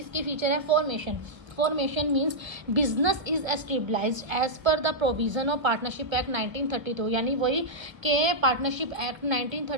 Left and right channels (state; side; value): late; left; 1.3 ms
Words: फीचर है formation. Formation means business is established as per the provision of partnership act 1932। यानी वही के पार्टनरशिप एक्ट